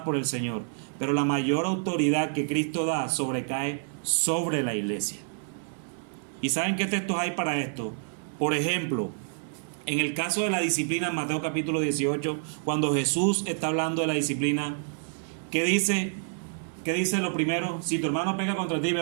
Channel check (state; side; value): silent; left; digital silence